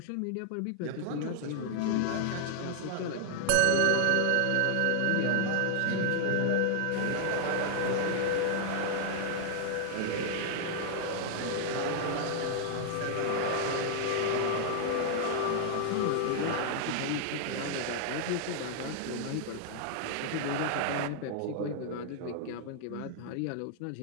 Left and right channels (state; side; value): different; both; correlation 0.00